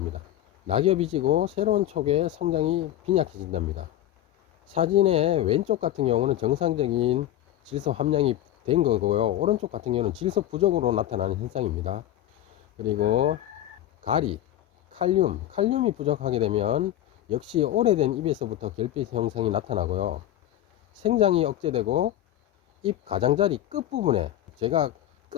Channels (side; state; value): right; quieter; 12.9 dB